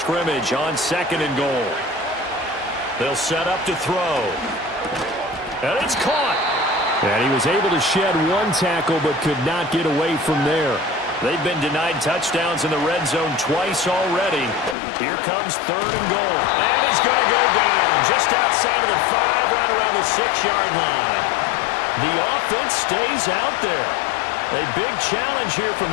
on 2nd and goal. They'll set up to throw. And it's caught. And he was able to shed one tackle but could not get away from there. They've been denied touchdowns in the red zone twice already. Here comes 3rd and goal. And he's going to go down just outside of the 5, right around the 6-yard line. The offense stays out there. A big challenge here from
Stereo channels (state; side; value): drops out; right; at 14.8 s